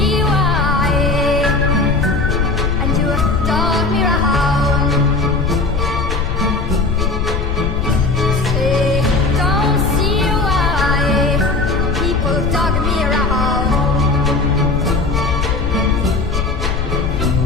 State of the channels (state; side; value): noise; left; rumble, 2 dB below the sound